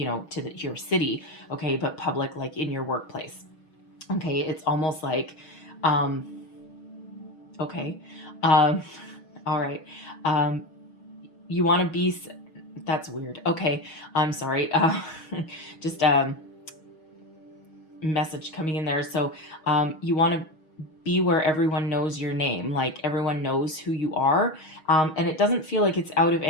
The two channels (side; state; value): right; late; 6.3 ms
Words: your city, okay, but public, like in your workplace. Okay, it's almost like, um, okay, um, all right, um, you want to be. That's weird. Okay, I'm sorry. Just message coming in there. So you want to be where everyone knows your name, like everyone knows who you are. And it doesn't feel like it's out of